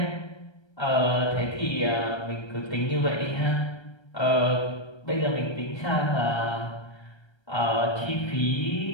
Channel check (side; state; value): right; late; 1.3 ms